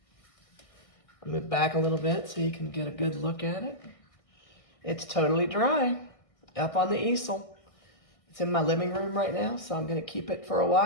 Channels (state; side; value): late; right; 1.5 ms